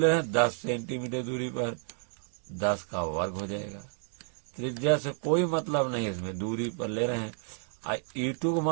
रहे हैं 10 सेंटीमीटर दूरी पर, 10 का वर्ग हो जाएगा। त्रिज्या से कोई मतलब नहीं, इसमें दूरी पर ले रहे हैं। E2 का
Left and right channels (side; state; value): left; silent; 57 dB below the other